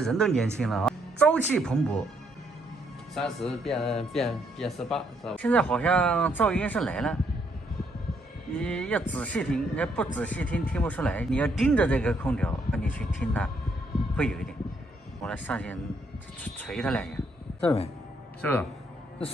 都年轻了啊，朝气蓬勃。30变18，是吧？现在好像噪音是来了。你要仔细听，你要不仔细听听不出来。你要盯着这个空调，你去听它，会有一点。我来上去捶它2下，这没？是不是？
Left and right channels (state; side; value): normal; both; correlation 0.72